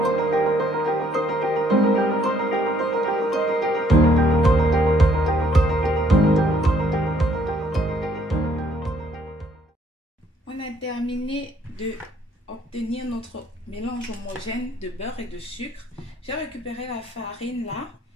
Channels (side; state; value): both; normal; correlation 0.65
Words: On a terminé de obtenir notre mélange homogène de beurre et de sucre. J'ai récupéré la farine là.